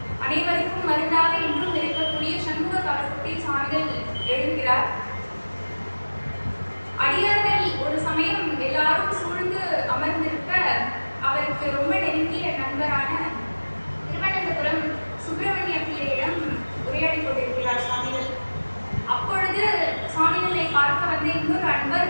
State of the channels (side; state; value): both; inverted; correlation -1.00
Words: அனைவருக்கும் மருந்தாக இன்றும் இருக்கக்கூடிய சண்முக கவசத்தை சுவாமிகள் எழுதுகிறார். அடியார்கள் ஒரு சமயம் எல்லாரும் சூழ்ந்து அமர்ந்திருக்க அவருக்கு ரொம்ப நெருங்கிய நண்பரான திருவனந்தபுரம் சுப்பிரமணிய பிள்ளையிடம் உரையாடி கொண்டிருக்கிறார் சுவாமிகள். அப்பொழுது சுவாமிகளை பார்க்க வந்த இன்னொரு